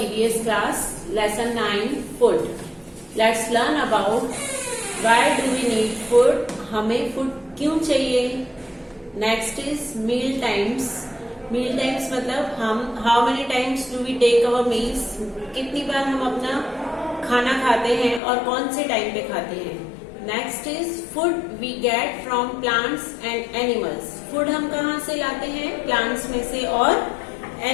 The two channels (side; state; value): right; drops out; at 18.2 s